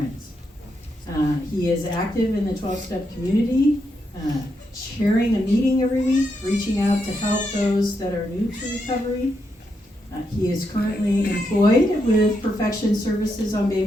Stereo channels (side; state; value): both; normal; correlation 0.82